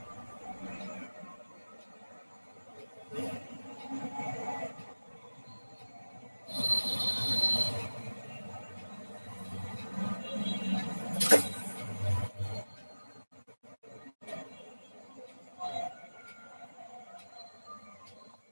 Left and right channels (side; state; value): both; inverted; correlation -1.00